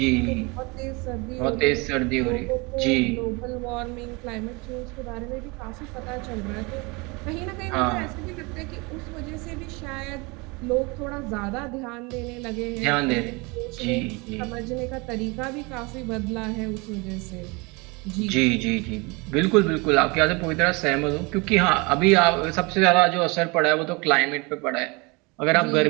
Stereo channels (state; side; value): quieter; left; 27.4 dB